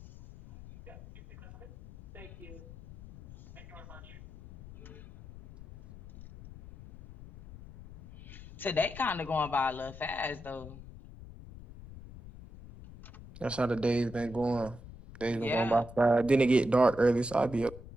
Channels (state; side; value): noise; left; rumble, 16 dB below the sound